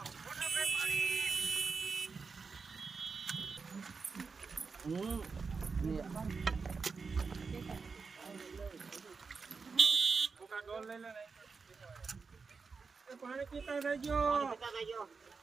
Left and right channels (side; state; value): left; quieter; 4.9 dB